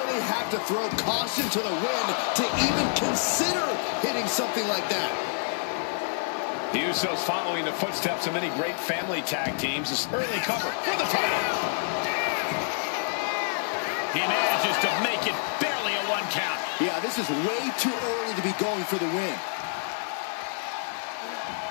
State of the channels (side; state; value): right; silent; 60 dB below the other